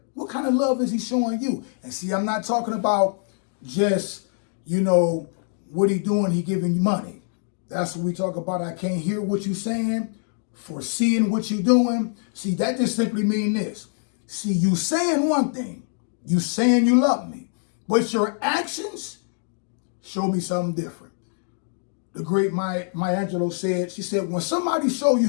What kind of love is he showing you? And see, I'm not talking about just, what he doing, he giving you money. That's what we talk about. I can't hear what you saying, foreseeing what you doing. See, that just simply mean this. See, you saying one thing, you saying you love me, but your actions show me something different. The great Maya Angelou said, she said, when somebody show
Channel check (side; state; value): right; silent; 60 dB below the other